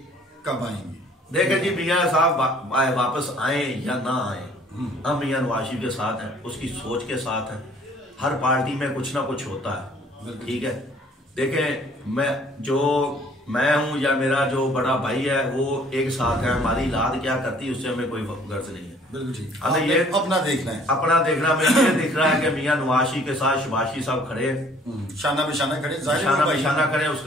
कब आएंगे? देखें जी, मियाँ साहब वापस आए या ना आए, हम मियाँ नवाज शरीफ के साथ हैं, उसकी सोच के साथ हैं। हर पार्टी में कुछ ना कुछ होता है, ठीक है। देखें, मैं हूं या मेरा जो बड़ा भाई है वो एक साथ है, हमारी लाद क्या करती है उससे हमें कोई गर्ज नहीं है। बिल्कुल ठीक, हमें ये अपना देखना है, अपना देखना। में ये दिख रहा है कि मियाँ नवाज शरीफ के साथ शहबाज शरीफ साहब खड़े, शाना बिशाना खड़े, शाना बिशाना खड़े,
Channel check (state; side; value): normal; both; correlation 0.57